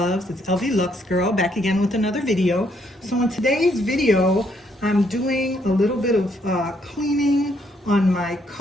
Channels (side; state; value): both; normal; correlation 0.71